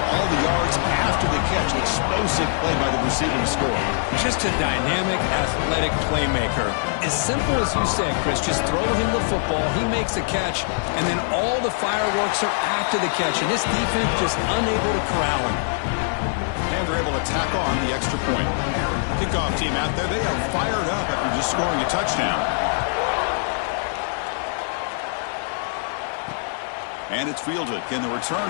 all the yards after the catch. Explosive play by the receiver to score. Just a dynamic, athletic playmaker. As simple as you said, Chris, just throw him the football, he makes a catch, and then all the fireworks are after the catch, and this defense just unable to corral him. And they're able to tack on the extra point. Kickoff team out there, they are fired up after just scoring a touchdown. And it's fielded. Can the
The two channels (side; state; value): right; silent; digital silence